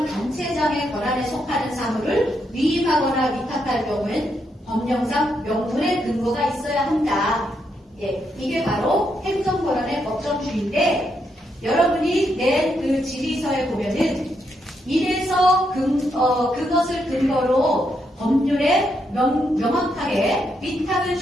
단체장의 권한에 속하는 사물을 위임하거나 위탁할 경우엔 법령상 명분의 근거가 있어야 한다. 예, 이게 바로 행정권한의 법정주의인데, 여러분이 낸 그 질의서에 보면은 이래서 그것을 근거로 법률에 명확하게 위탁을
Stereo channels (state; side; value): normal; both; correlation 0.79